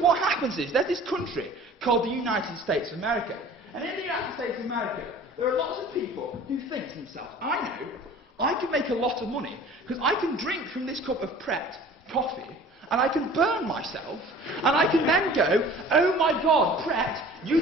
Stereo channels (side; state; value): both; normal; correlation 0.46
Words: what happens is, there's this country called the United States of America. And in the United States of America, there are lots of people who think to themselves, I know, I can make a lot of money, because I can drink from this cup of Pret coffee, and I can burn myself, and I can then go, oh my God, Pret, you